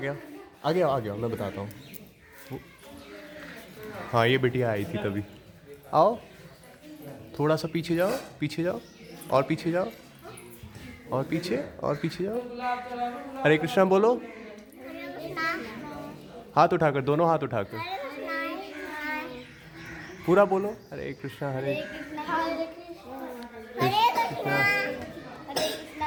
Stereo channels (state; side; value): identical; both; correlation 1.00